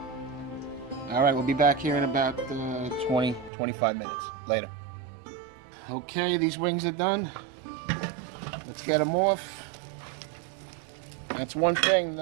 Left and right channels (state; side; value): drops out; left; at 3.5 s